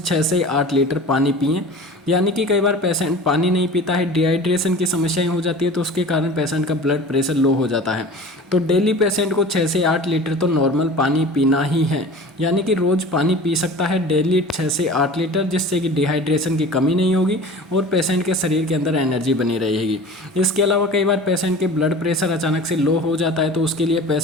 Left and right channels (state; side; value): normal; both; correlation 0.39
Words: से 8 लीटर पानी पिएं। यानी कि कई बार पेशेंट पानी नहीं पीता है, डिहाइड्रेशन की समस्याएं हो जाती है, तो उसके कारण पेशेंट का ब्लड प्रेशर लो हो जाता है। तो डेली पेशेंट को 6 से 8 लीटर तो नॉर्मल पानी पीना ही है, यानी कि रोज़ पानी पी सकता है डेली 6 से 8 लीटर, जिससे कि डिहाइड्रेशन की कमी नहीं होगी और पेशेंट के शरीर के अंदर एनर्जी बनी रहेगी। इसके अलावा कई बार पेशेंट के ब्लड प्रेशर अचानक से लो हो जाता है तो उसके लिए